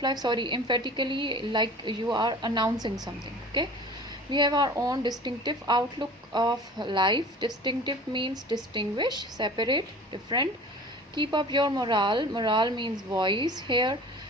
life. Emphatically, like you are announcing something. Okay, we have our own distinctive outlook of life. Distinctive means distinguish, separate, different. Keep up your morale means voice here.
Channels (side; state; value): both; normal; correlation 0.42